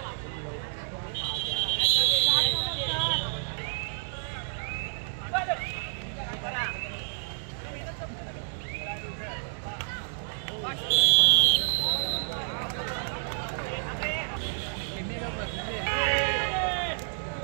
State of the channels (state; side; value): silent; left; digital silence